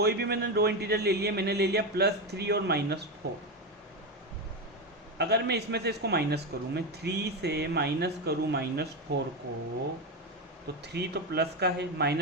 भी मैंने दो इंटीजर ले लिए, मैंने ले लिया +3 और -4। अगर मैं इसमें से इसको माइनस करूँ, मैं 3 से माइनस करूँ -4 को, तो 3 तो प्लस का है,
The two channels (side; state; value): both; normal; correlation 0.13